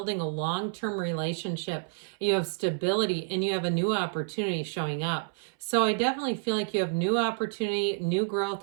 a long-term relationship, you have stability, and you have a new opportunity showing up. So I definitely feel like you have new opportunity, new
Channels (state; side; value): silent; left; 59 dB below the other